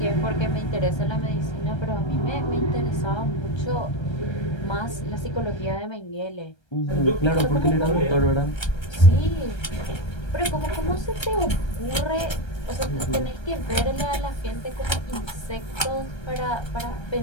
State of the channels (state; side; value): late; right; 1.3 ms